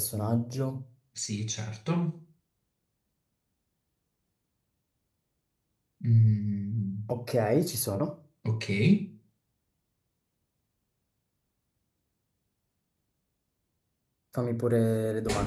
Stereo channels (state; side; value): identical; both; correlation 1.00